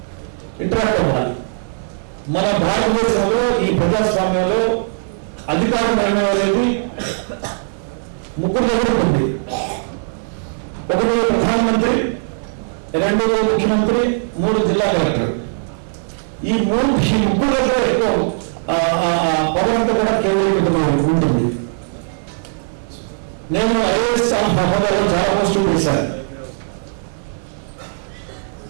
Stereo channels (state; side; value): silent; left; 67 dB below the other